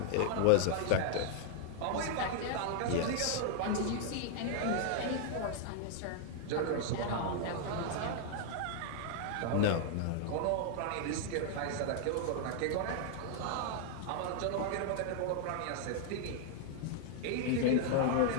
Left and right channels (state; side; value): different; both; correlation 0.00